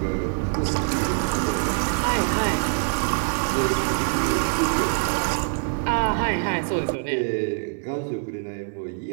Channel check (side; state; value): left; silent; digital silence